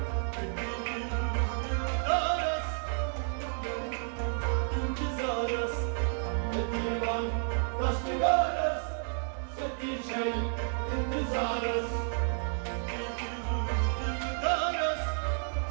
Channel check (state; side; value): silent; left; 57 dB below the other